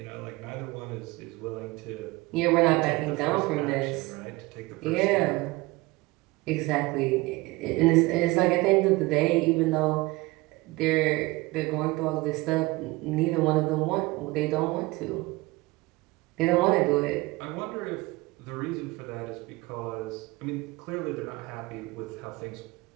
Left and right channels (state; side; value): quieter; left; 22.0 dB